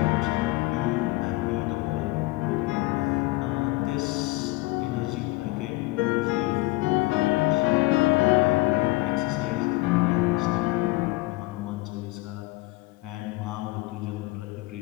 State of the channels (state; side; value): quieter; right; 21.7 dB